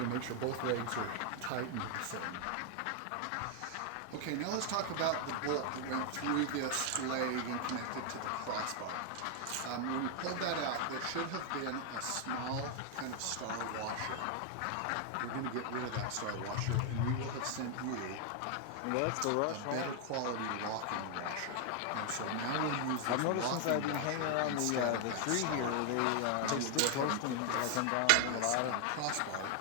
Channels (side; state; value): both; different; correlation 0.00